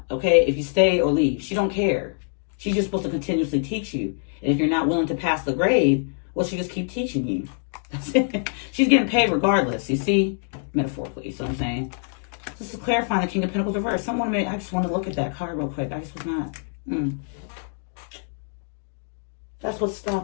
Okay? If you stay or leave. She don't care. She's just supposed to continuously teach you. And if you're not willing to pass the grade, well, she just keep teaching you. That's it. She's getting paid regardless, you see? Metaphorically, you see what I'm saying? Just to clarify the King of Pentacles reverse. I just want to look at that card real quick. I just was not. That's what's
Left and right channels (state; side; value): silent; right; digital silence